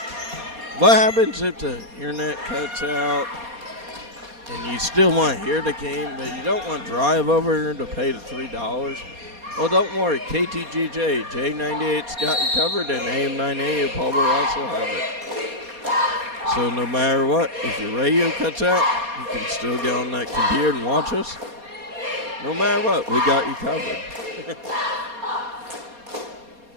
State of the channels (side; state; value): left; late; 4.2 ms